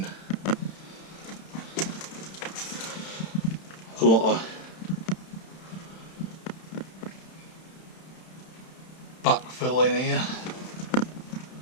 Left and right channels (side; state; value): right; late; 31 ms